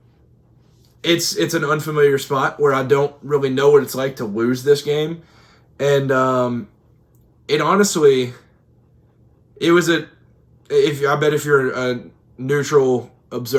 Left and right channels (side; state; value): both; identical; correlation 1.00